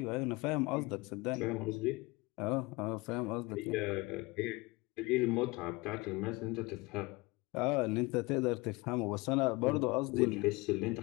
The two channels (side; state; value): right; quieter; 23.9 dB